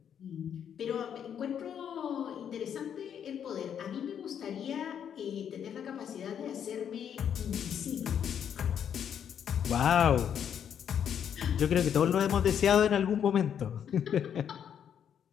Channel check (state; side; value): quieter; right; 8.6 dB